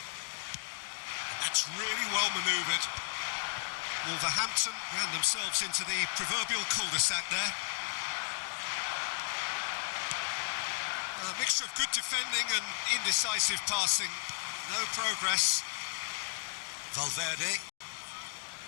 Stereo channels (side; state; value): right; silent; digital silence